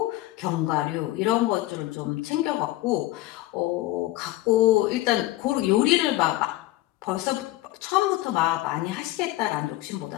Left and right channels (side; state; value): right; quieter; 17.0 dB